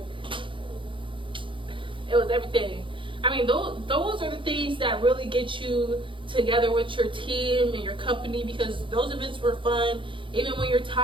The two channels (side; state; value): left; late; 0.25 ms